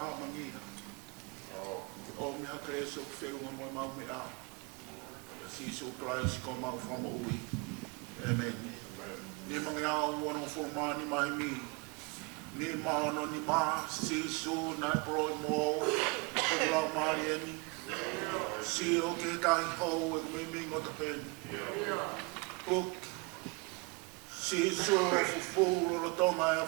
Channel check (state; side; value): quieter; left; 29.7 dB